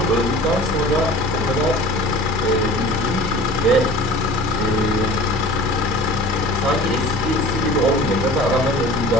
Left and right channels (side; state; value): both; normal; correlation 0.42